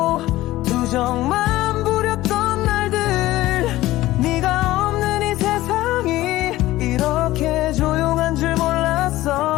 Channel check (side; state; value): right; quieter; 16.6 dB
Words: 투정만 부렸던 날들.